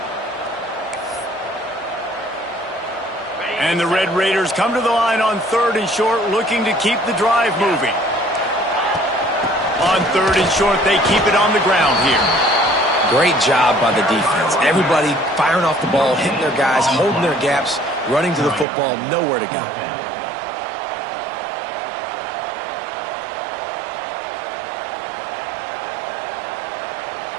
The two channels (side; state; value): left; drops out; at 18.7 s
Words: And the Red Raiders come to the line on 3rd and short, looking to keep the drive moving. On 3rd and short, they keep it on the ground here. Great job by the defense. Everybody firing off the ball, hitting their guys, holding their gaps, running to the football, nowhere to go.